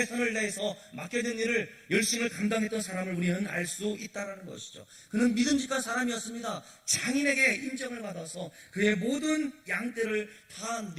다해서 맡겨진 일을 열심히 감당했던 사람을 우리는 알 수 있다는 것이죠. 그는 믿음직한 사람이었습니다. 장인에게 인정을 받아서 그의 모든 양떼를 다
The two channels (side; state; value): both; identical; correlation 1.00